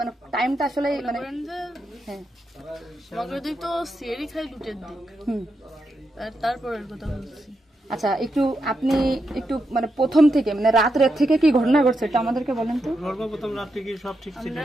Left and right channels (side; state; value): both; normal; correlation 0.85